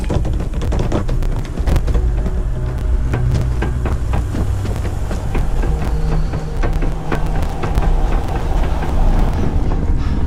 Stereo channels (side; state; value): both; identical; correlation 1.00